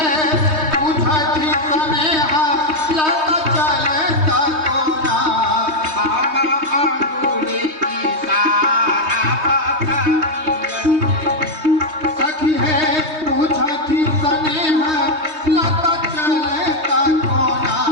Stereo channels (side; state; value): left; late; 3.2 ms